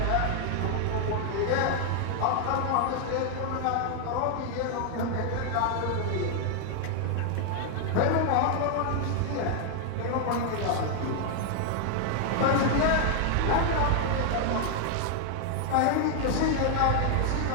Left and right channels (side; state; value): both; different; correlation 0.00